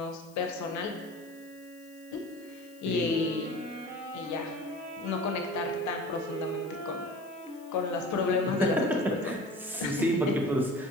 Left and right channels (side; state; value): left; noise; hiss, 25 dB below the sound